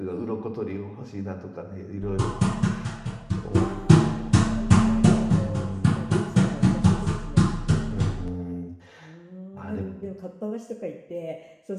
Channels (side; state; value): both; identical; correlation 1.00